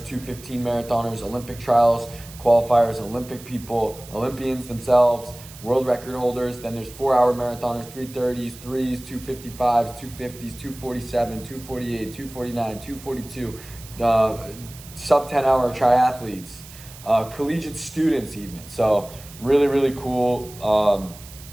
marathoners, Olympic trials, qualifiers, Olympic people, Olympians themselves, world record holders. Then there's 4-hour marathoners, 3:30s, 3s, 2:55s, 2:50s, 2:47, 2:48, 2:49, 2:42, sub 10-hour triathletes, collegiate students even. So really, really cool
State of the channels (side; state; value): right; noise; hiss, 18 dB below the sound